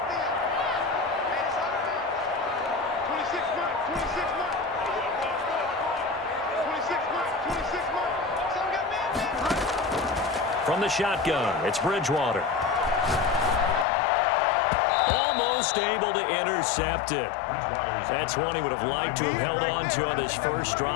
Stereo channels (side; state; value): right; drops out; at 13.9 s